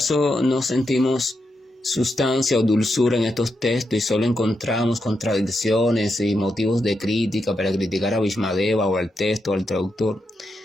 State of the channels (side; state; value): both; normal; correlation 0.84